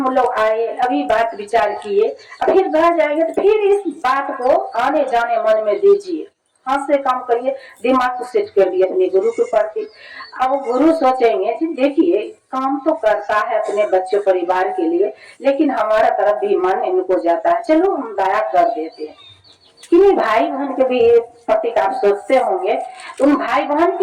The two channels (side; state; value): both; identical; correlation 1.00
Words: लोग आए, अभी बात विचार किए, फिर घर जाएंगे तो फिर इस बात को आने जाने मन में दीजिए, हाथ से काम करिए, दिमाग को सेट कर दिए अपने गुरु के प्रति। अब गुरु सोचेंगे कि देखिए काम तो करता है अपने बच्चों परिवार के लिए, लेकिन हमारा तरफ भी मन इनको जाता है, चलो हम दया कर देते हैं। कि भाई बहन के भी प्रतीक आप सोचते होंगे, उन भाई बहन